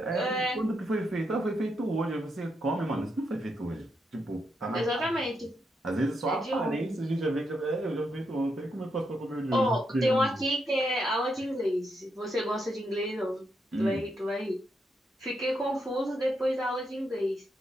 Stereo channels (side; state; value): both; normal; correlation 0.81